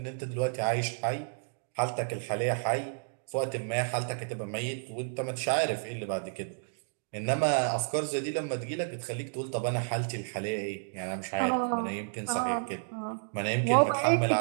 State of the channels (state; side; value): silent; left; digital silence